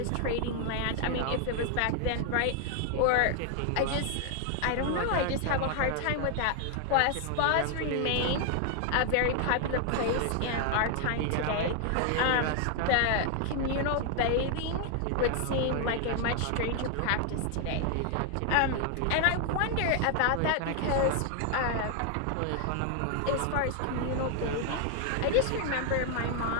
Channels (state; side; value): different; both; correlation 0.00